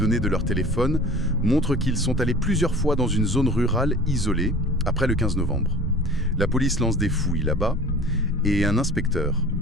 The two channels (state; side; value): normal; both; correlation 0.42